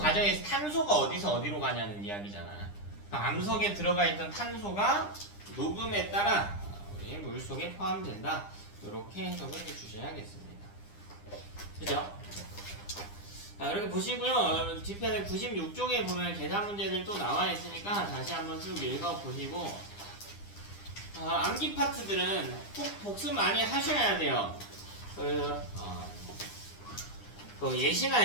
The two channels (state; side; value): late; right; 9.9 ms